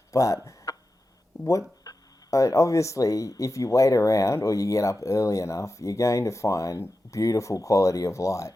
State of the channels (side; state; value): both; normal; correlation 0.92